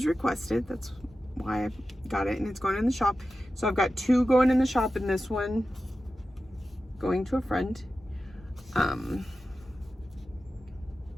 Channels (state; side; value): normal; both; correlation 0.93